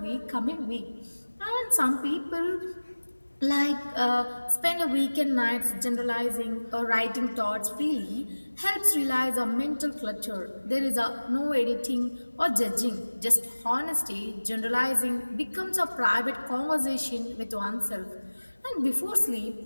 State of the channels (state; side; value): inverted; both; correlation -1.00